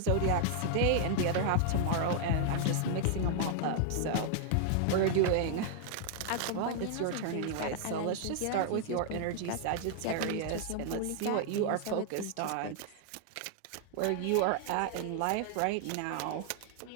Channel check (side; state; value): both; different; correlation 0.00